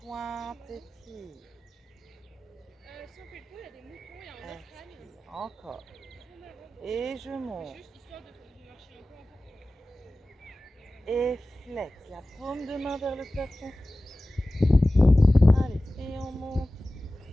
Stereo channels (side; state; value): both; normal; correlation 0.96